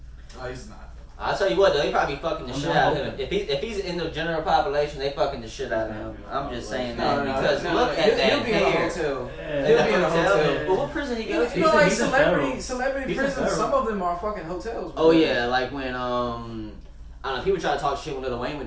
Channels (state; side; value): identical; both; correlation 1.00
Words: Oh, he's not. I'll tell you what though, they probably fucking the I'm shit not out of him. hoping. If he's in the general population, they fucking the shit out of him. I'm just saying that because no, look at he'll that be in a hair. hotel. Yeah. He'll be in a hotel. But what prison he You go to? know, like He's in federal. celebrity He's in prisons. federal. Some of them are fucking hotels. Oh bro. yeah, like when I don't know, people try to talk shit when Lil Wayne